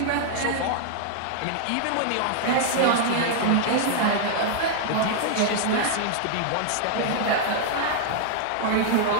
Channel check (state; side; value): different; both; correlation -0.01